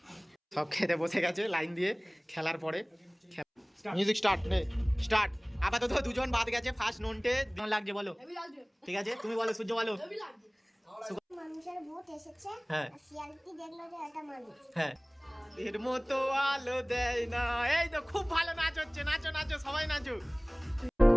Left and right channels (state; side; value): identical; both; correlation 1.00